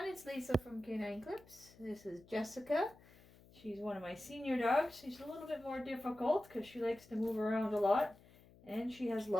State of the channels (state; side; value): noise; left; hum, 24 dB below the sound